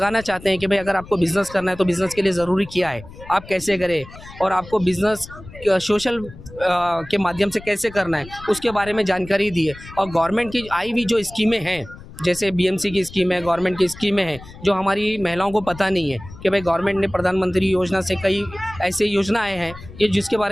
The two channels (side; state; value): left; noise; rumble, 17 dB below the sound